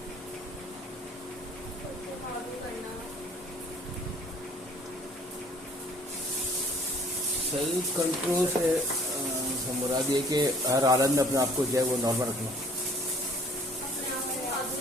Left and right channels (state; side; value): normal; both; correlation 0.55